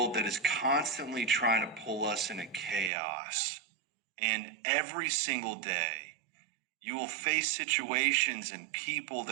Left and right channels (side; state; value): left; drops out; at 2.9 s